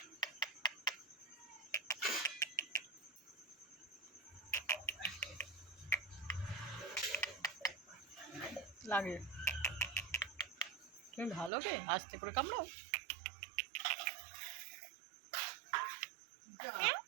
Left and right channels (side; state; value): left; drops out; at 11.5 s